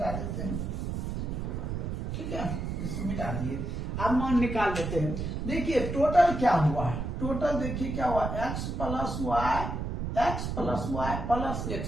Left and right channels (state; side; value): noise; right; rumble, 3 dB below the sound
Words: देते हैं ठीक है इसको मिटा दिए अब मान निकाल देते हैं देखिए टोटल क्या हुआ टोटल देखिए क्या हुआ x प्लस वाई प्लस